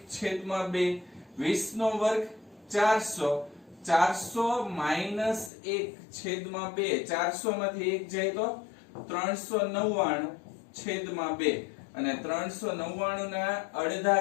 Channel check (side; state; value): right; drops out; at 5.5 s